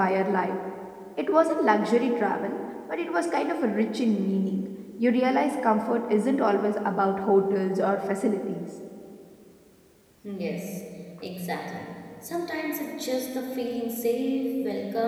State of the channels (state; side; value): identical; both; correlation 1.00